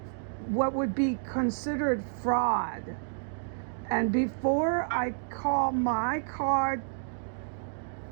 what would be considered fraud. And before I call my card,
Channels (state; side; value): silent; left; digital silence